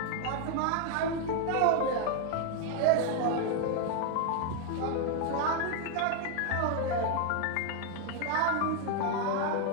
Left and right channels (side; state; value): both; different; correlation 0.01